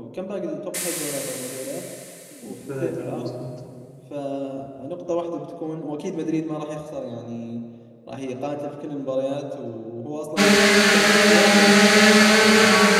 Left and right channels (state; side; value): identical; both; correlation 1.00